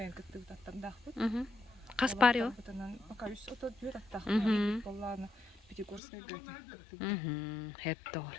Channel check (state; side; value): drops out; right; at 6.0 s